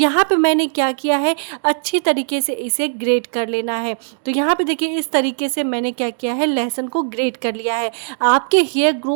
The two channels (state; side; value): silent; left; digital silence